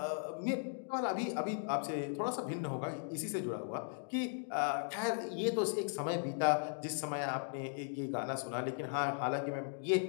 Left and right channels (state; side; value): silent; right; digital silence